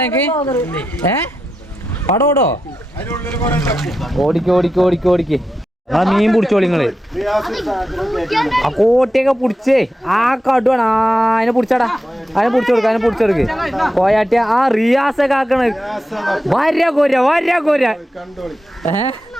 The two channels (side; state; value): both; normal; correlation 0.88